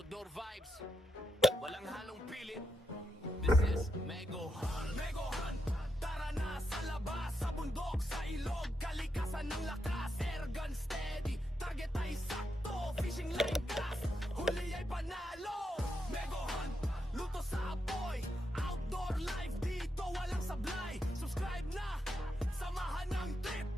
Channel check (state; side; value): normal; both; correlation 0.84